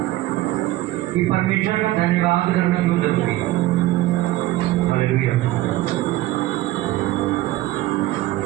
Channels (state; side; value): quieter; left; 16.4 dB